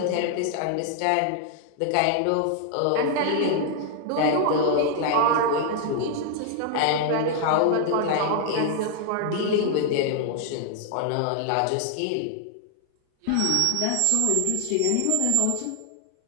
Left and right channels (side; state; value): both; different; correlation 0.00